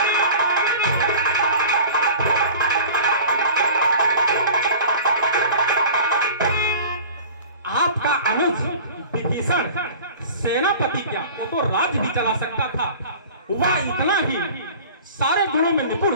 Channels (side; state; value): both; inverted; correlation -0.41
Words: विभीषण सेनापति क्या, वो तो राज्य भी चला सकता था। वह इतना ही सारे गुणों में निपुण